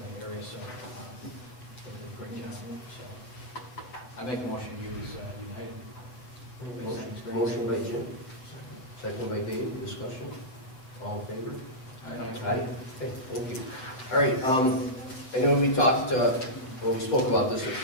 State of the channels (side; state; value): right; late; 7.8 ms